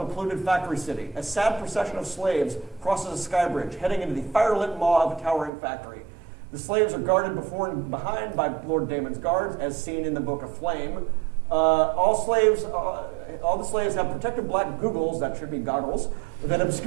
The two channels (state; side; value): drops out; left; at 5.5 s